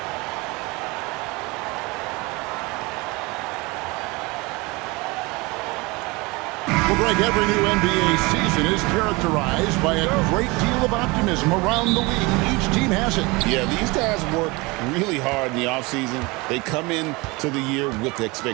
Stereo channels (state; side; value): quieter; left; 24.9 dB